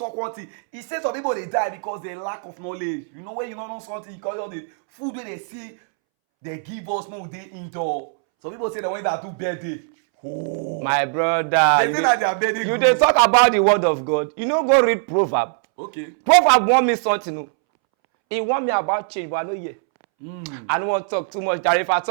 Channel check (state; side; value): silent; left; 65 dB below the other